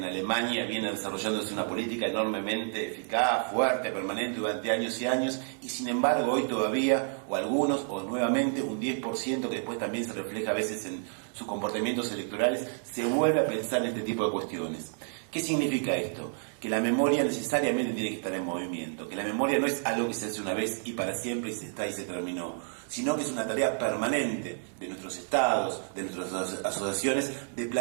Alemania viene desarrollándose una política enormemente eficaz, fuerte, permanente durante años y años, y sin embargo hoy todavía, o algunos, o nuevamente un 10% que después también se refleja a veces en sus comportamientos electorales, se vuelve a pensar en este tipo de cuestiones. ¿Qué significa esto? Que la memoria necesariamente tiene que estar en movimiento, que la memoria no es algo que se hace una vez y para siempre y se está y se terminó, sino que es una tarea permanente de nuestros estados, de nuestras asociaciones, de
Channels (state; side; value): silent; left; 58 dB below the other